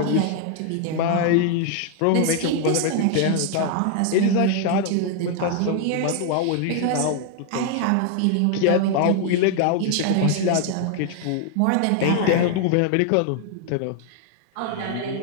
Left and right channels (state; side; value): different; both; correlation 0.00